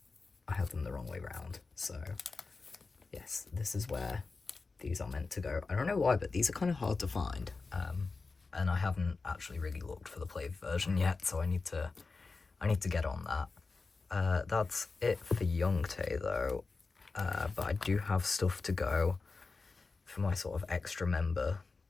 I have them the wrong way round. So, yes, this is where these are meant to go. I don't know why, but these are kind of hard to find. And I haven't actually really looked for the play version yet, so I need to get on that. That's it for Youngtae, though. But I do have stuff to go for my sort of extra member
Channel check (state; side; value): quieter; right; 4.1 dB